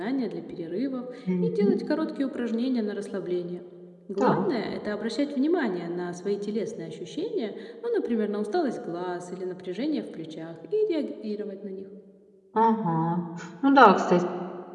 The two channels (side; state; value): both; identical; correlation 1.00